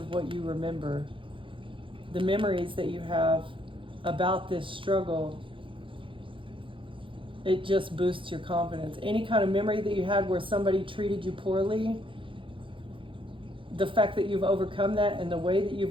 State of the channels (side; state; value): left; late; 0.25 ms